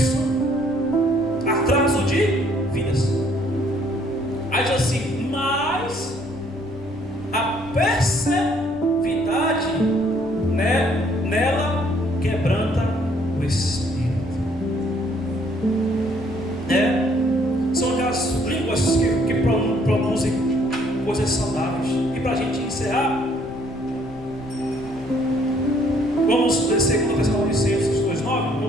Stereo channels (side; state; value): left; noise; rumble, 19 dB below the sound